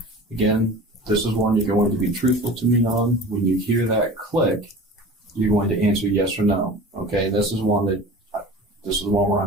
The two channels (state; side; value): normal; both; correlation 0.38